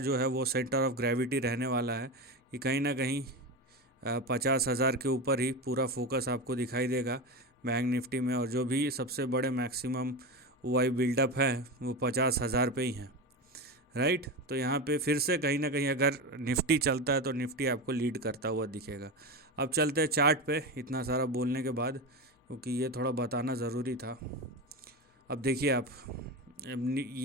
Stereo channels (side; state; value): both; normal; correlation 0.21